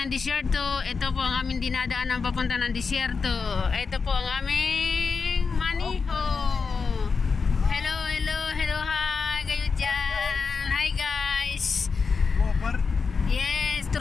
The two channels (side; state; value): right; quieter; 5.1 dB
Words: disyerto. Ito po ang aming dinadaanan papunta ng disyerto. Ito po ang aming maniho. Hello, hello, hello, hi kayo dyan. Hi guys. Yes,